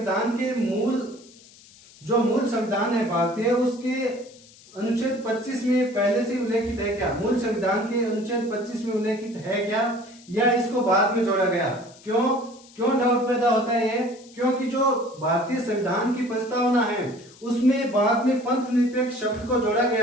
के मूल संविधान है भारतीय, उसके अनुच्छेद 25 में पहले से उल्लेखित है क्या, मूल संविधान के अनुच्छेद 25 में उल्लेखित है क्या, या इसको बाद में जोड़ा गया? क्यों डाउट पैदा होता है ये? क्योंकि जो भारतीय संविधान की प्रस्तावना है उसमें बाद में पंथ निरपेक्ष शब्द को जोड़ा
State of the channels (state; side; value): noise; left; hiss, 24 dB below the sound